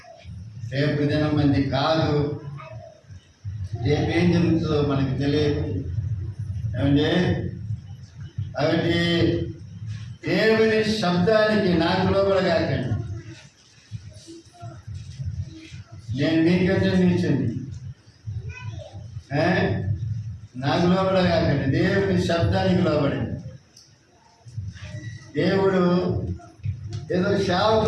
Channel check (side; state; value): both; identical; correlation 1.00